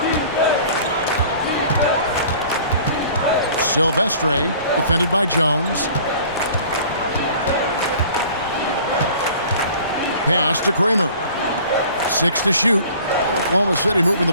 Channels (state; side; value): inverted; both; correlation -0.48